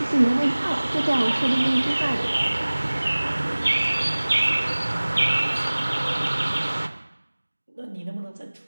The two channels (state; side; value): inverted; both; correlation -1.00